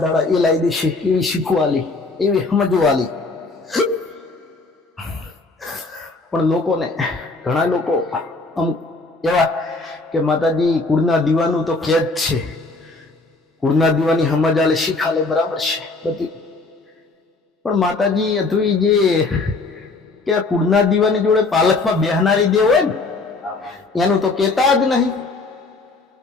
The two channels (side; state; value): right; quieter; 3.6 dB